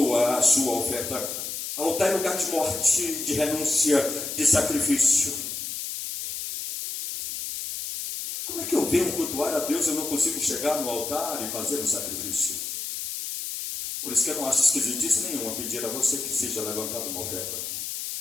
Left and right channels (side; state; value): left; noise; hiss, 5 dB below the sound